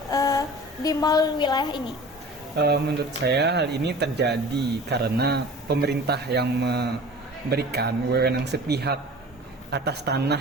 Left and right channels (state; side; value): normal; both; correlation 0.41